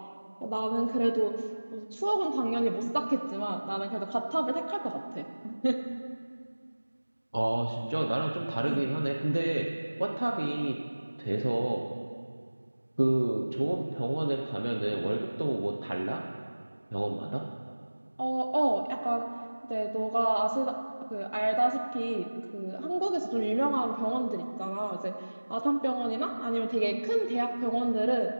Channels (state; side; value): inverted; both; correlation -1.00